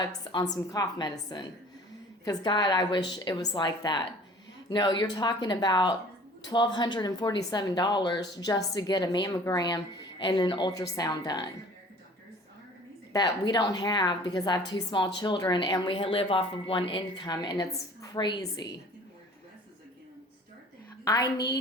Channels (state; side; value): normal; both; correlation 0.48